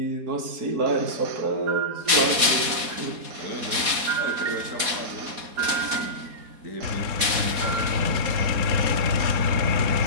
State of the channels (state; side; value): late; left; 4.1 ms